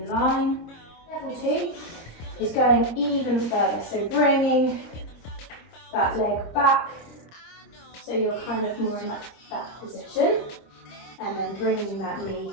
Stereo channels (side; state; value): right; late; 26 ms